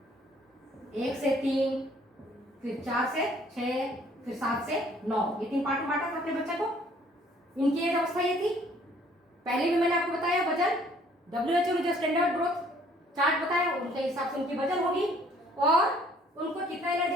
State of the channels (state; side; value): normal; both; correlation 0.60